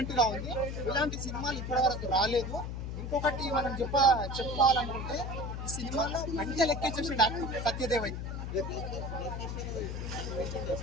గా ఉంది. ఇలాంటి సినిమాలు ఇప్పటి వరకు రాలేదు. ఇంకొకటి మనం చెప్పుకోవాలనుకుంటే ఈ సినిమాలో మంచిగా లెక్కేసేసి డాక్టర్ సత్యదేవ్ అయితే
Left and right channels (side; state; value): left; noise; hum, 5 dB below the sound